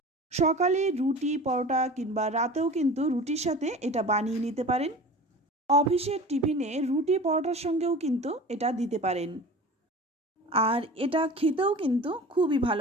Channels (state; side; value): normal; both; correlation 0.37